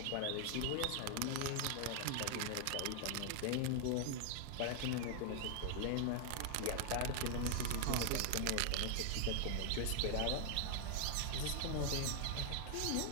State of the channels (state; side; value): different; both; correlation 0.00